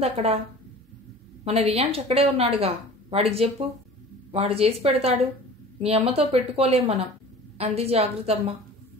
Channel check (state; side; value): normal; both; correlation 0.41